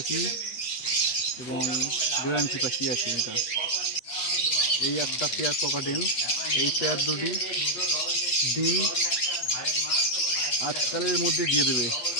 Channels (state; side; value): late; right; 8.3 ms